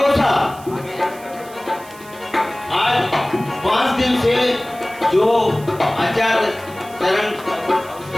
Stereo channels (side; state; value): right; noise; hiss, 21 dB below the sound